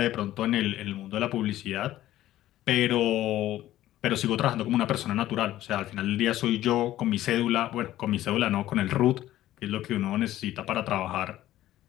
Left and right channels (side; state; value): right; quieter; 14.1 dB